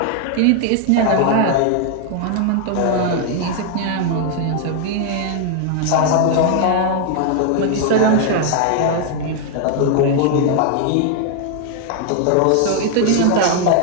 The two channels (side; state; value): both; different; correlation 0.00